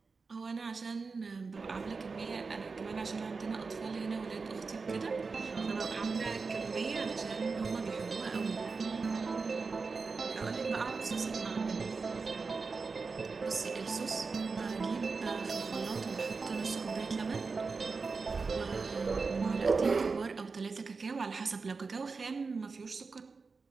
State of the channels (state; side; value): quieter; left; 4.5 dB